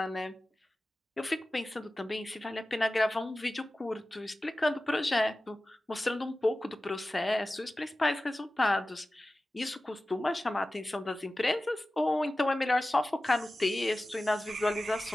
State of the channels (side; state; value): both; normal; correlation 0.96